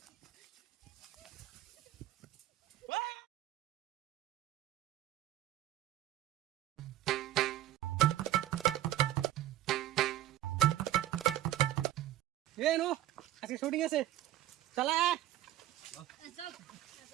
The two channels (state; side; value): quieter; left; 13.6 dB